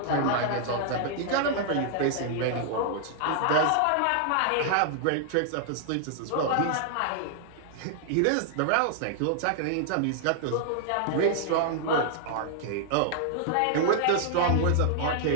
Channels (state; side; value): different; both; correlation -0.01